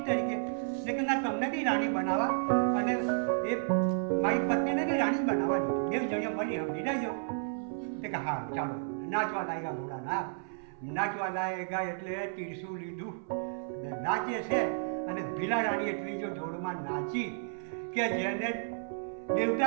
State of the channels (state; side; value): silent; left; 56 dB below the other